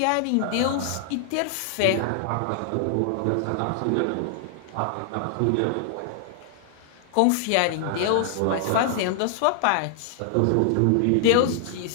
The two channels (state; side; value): different; both; correlation -0.01